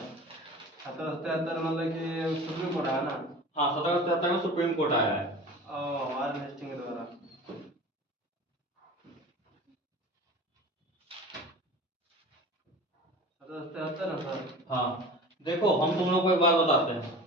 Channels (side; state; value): both; normal; correlation 0.37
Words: 1773 मतलब कि सुप्रीम कोर्ट आया ना। हाँ 1773 में सुप्रीम कोर्ट आया है। वारेन हेस्टिंग के द्वारा। 1773 है सर। हाँ देखो हम तुम लोग को एक बात बताते हैं,